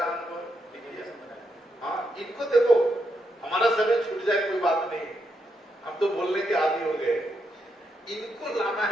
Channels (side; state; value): both; normal; correlation 0.81